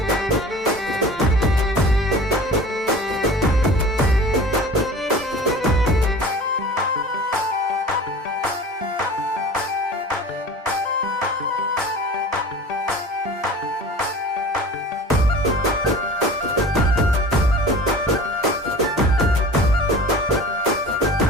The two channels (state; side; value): normal; both; correlation 0.40